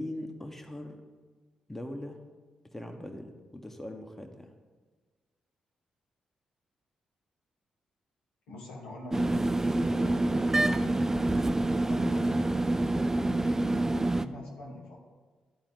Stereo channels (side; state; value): both; normal; correlation 0.97